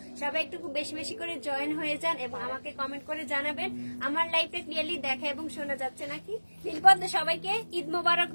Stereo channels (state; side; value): inverted; both; correlation -1.00